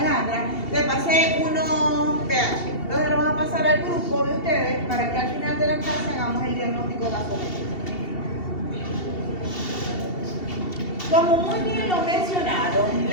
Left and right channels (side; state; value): right; late; 2.7 ms